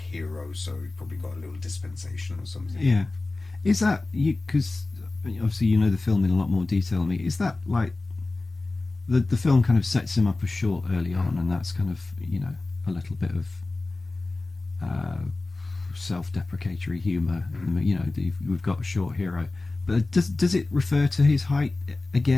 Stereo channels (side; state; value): right; quieter; 3.2 dB